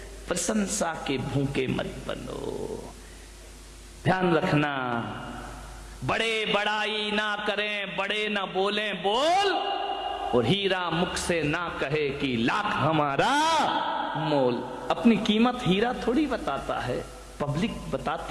प्रशंसा के भूखे मत बनो। ध्यान रखना, बड़े बड़ाई ना करें, बड़े ना बोलें बोल, और हीरा मुख से ना कहे कि लाख हमारा मोल। अपनी कीमत हीरा थोड़ी बताता है, पब्लिक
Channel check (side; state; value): both; identical; correlation 1.00